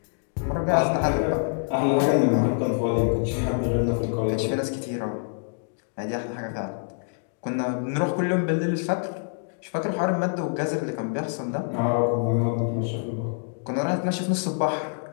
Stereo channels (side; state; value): right; silent; digital silence